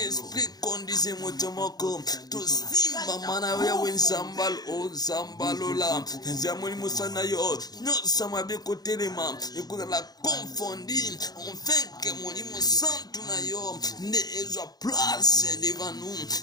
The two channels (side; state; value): right; late; 0.19 ms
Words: conduisez moto moko. To simba mana we Zambal o Zamba Lola. Zamoni musana yo. No samabe kotelema. Écoute la confondie. Enfin que molimo santu na yo. Ne ezwa place devant